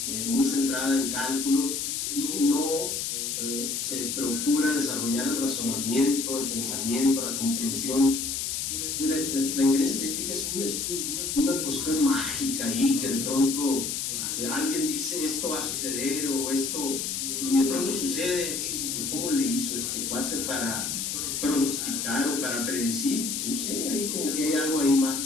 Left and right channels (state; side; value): noise; left; hiss, 2 dB below the sound